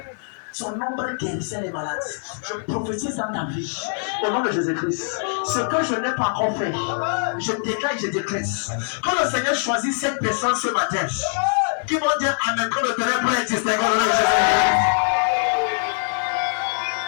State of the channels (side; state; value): right; silent; 61 dB below the other